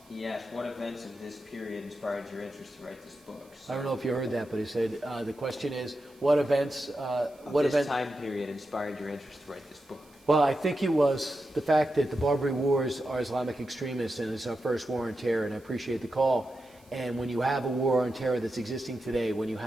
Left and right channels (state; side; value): noise; right; hiss, 29 dB below the sound